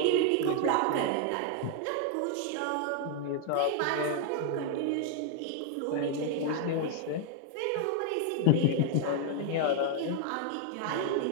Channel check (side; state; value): both; different; correlation 0.00